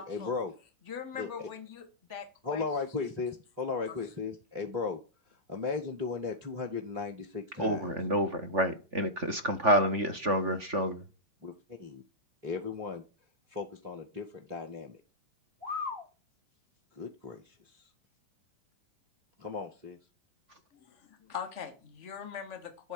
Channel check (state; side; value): late; left; 3.5 ms